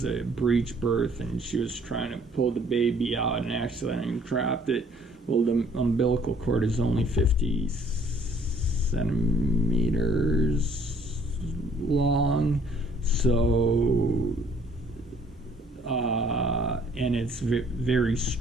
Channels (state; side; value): normal; both; correlation 0.59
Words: a breech birth and she was trying to pull the baby out and accidentally dropped it. Well, the umbilical cord is only 50 centimeters long, so and it's very